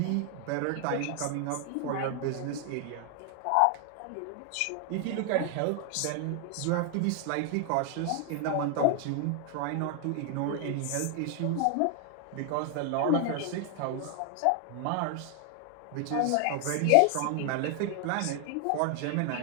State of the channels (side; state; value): both; different; correlation 0.00